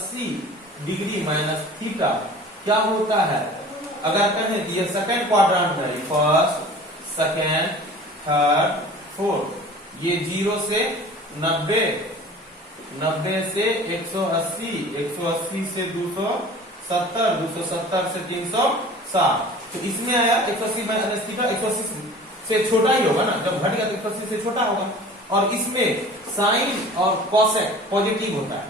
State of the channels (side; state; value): both; normal; correlation 0.43